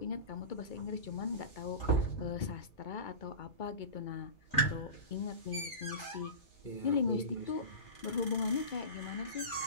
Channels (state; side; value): late; right; 2.2 ms